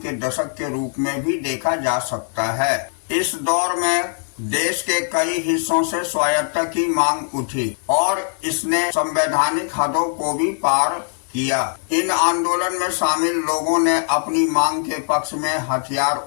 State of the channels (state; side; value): silent; right; 65 dB below the other